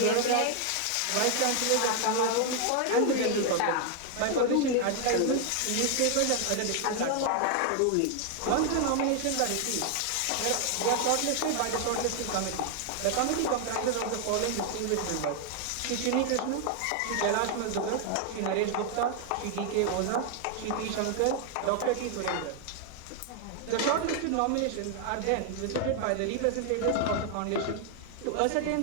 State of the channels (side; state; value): both; different; correlation 0.00